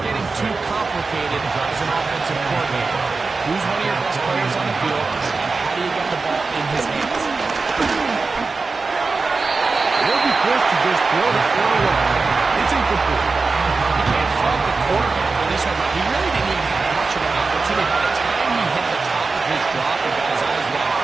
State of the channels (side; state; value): left; quieter; 4.1 dB